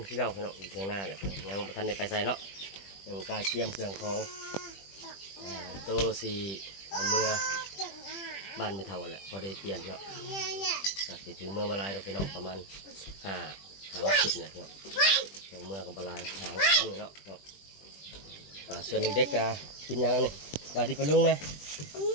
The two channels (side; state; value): right; late; 20 ms